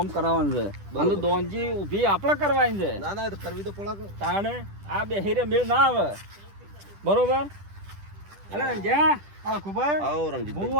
કરાવવાનું છે બરોબર. અને દોનજી ઊભી આપણે કરવાની છે ના ના એ તો કરવી તો પડે કે. તાણે આ બેહીરે મેળ ના આવે બરોબર અલે જ્યાં આ ખુબાઈ આવો રણજીત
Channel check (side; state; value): left; late; 10 ms